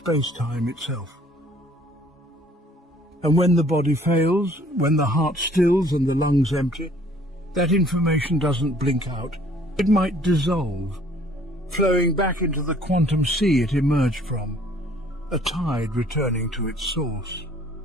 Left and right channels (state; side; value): normal; both; correlation 0.57